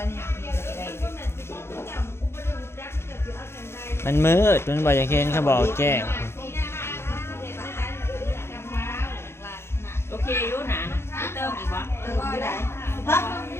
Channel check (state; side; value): late; right; 0.12 ms